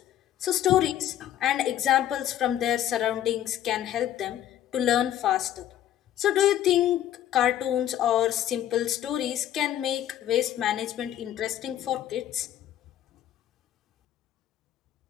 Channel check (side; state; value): right; quieter; 11.7 dB